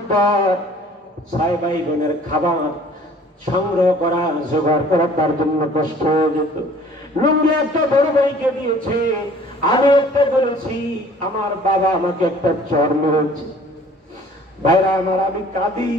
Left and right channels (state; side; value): normal; both; correlation 0.52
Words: 6 ভাই বোনের খাবার সংগ্রহ করা, জোগাড় করা তার জন্য কষ্ট হয়ে যেত। লুঙ্গি একটা বড় ভাইকে দিয়েছে, আমি একটা বলেছি, আমার বাবা আমাকে একটা চর মেরেছে। ভাইরা আমার, আমি কাঁদি।